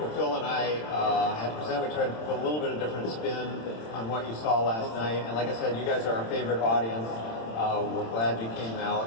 Phil and I had to present. We tried to put a little bit of different spin on what you saw last night. And like I said, you guys are our favorite audience. We're glad you came out,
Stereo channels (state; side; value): late; right; 26 ms